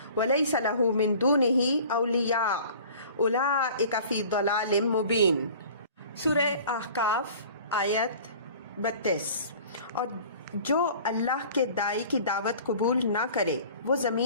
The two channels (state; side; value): inverted; both; correlation -0.46